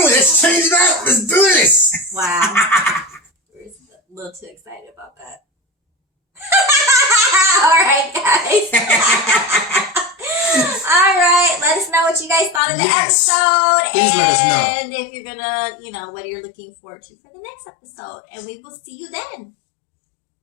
Let's change it up. Let's do this. Wow. We're a little too excited about that. All right, guys. All right, let us know what you guys thought of the episode. Please let us know. And if you're gonna, you know, what you're looking forward to for the next episode. And we will see you then.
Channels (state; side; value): drops out; right; at 12.6 s